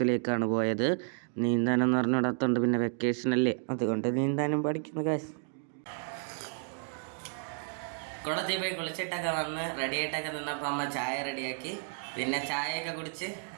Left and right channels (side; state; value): left; silent; 57 dB below the other